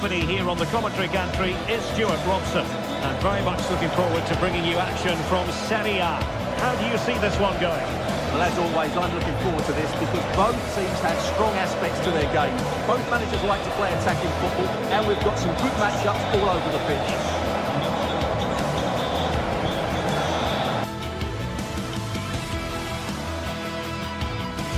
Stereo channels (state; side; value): identical; both; correlation 1.00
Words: here on the commentary gantry is Stuart Robson. And very much looking forward to bringing you action from Serie A. How do you see this one going? Well, as always, I'm looking forward to this because both teams have strong aspects to their game. Both managers like to play attacking football, and we've got some good matchups all over the pitch.